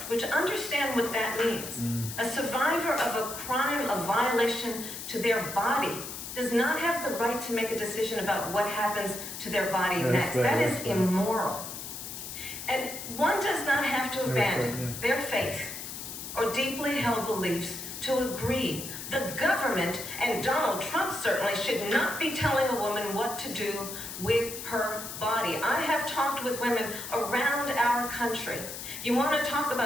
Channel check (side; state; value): left; noise; hiss, 9 dB below the sound